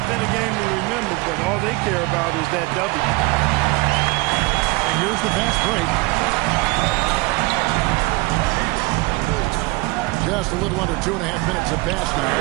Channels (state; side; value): quieter; left; 23.6 dB